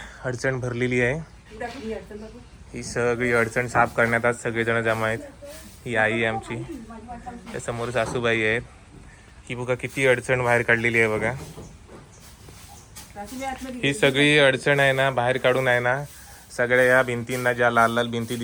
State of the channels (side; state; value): both; identical; correlation 1.00